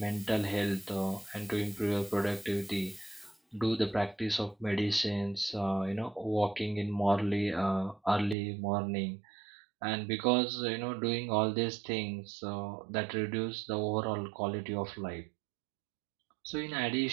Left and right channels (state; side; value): drops out; left; at 8.3 s